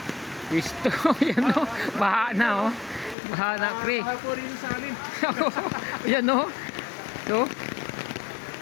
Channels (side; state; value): right; drops out; at 3.2 s